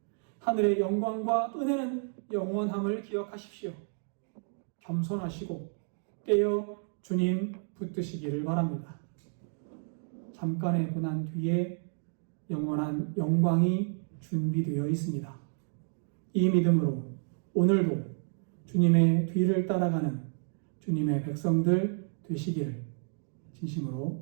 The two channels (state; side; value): silent; left; 57 dB below the other